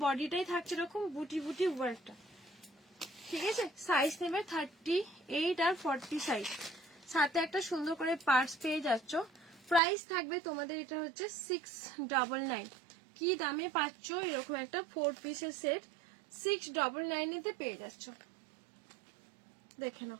বডিটাই থাকছে এরকম বুটি বুটি ওয়ার্কটা, ঠিক আছে। সাইজ নেবে 38 আর 40 সাইজ, সাথে একটা সুন্দর করে পার্স পেয়ে যাচ্ছ। প্রাইস থাকবে তোমাদের এটা হচ্ছে 699। কি দামে পাচ্ছ এরকম একটা 4 পিসের সেট, 699 পেয়ে যাচ্ছ, দেখে নাও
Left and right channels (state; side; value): drops out; left; at 9.8 s